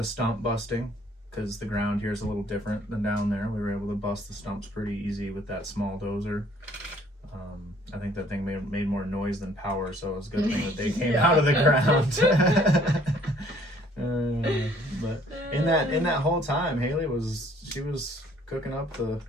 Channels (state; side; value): normal; both; correlation 0.59